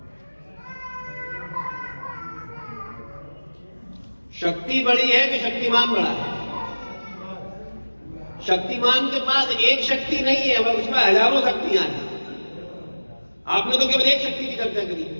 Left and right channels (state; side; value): inverted; both; correlation -1.00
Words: शक्ति बड़ी है कि शक्तिमान बड़ा है? शक्तिमान के पास एक शक्ति नहीं है, वह उसमें हजारों शक्तियां हैं। आपने तो केवल एक शक्ति की चर्चा करी।